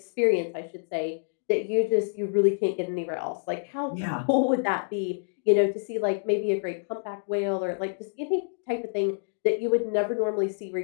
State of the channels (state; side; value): silent; right; digital silence